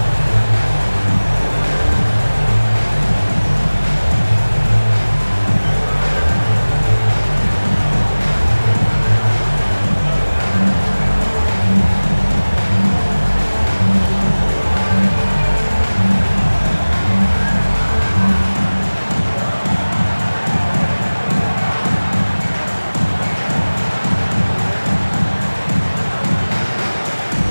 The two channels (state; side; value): inverted; both; correlation -1.00